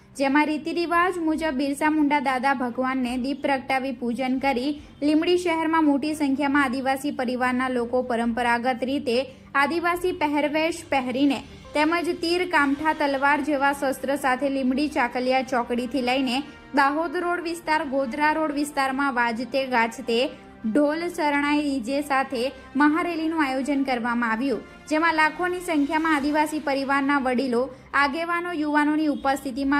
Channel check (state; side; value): identical; both; correlation 1.00